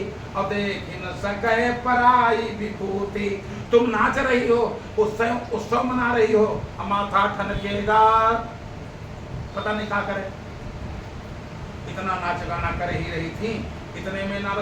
और देख न सके पराई विभूति। तुम नाच रही हो, उत्सव मना रही हो, माथा ठनकेगा, पता नहीं क्या करे। इतना नाच गाना कर ही रही थी, इतने में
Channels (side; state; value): both; identical; correlation 1.00